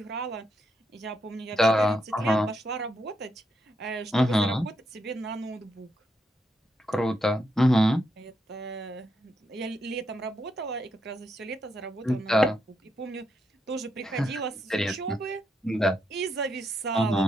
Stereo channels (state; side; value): normal; both; correlation 0.80